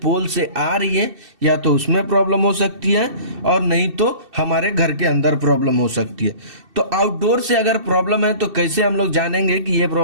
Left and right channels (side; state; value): left; late; 2.6 ms